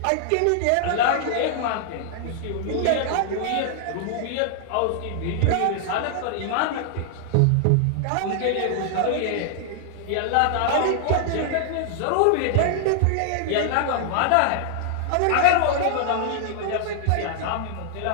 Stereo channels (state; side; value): different; both; correlation -0.01